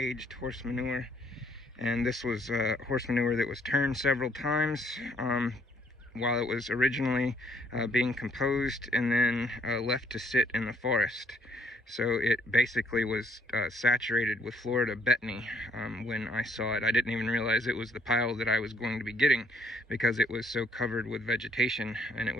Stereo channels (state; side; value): normal; both; correlation 0.66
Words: horse manure. And this was horse manure that was turned several times while it was originally being composed, and then left to sit in the forest. So it basically was saturated with Florida betony when I saw it. I didn't even realize it was the pile that I was going to be getting because it was so covered with vegetation, and it